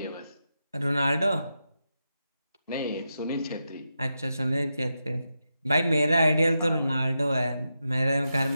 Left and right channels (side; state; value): both; inverted; correlation -0.88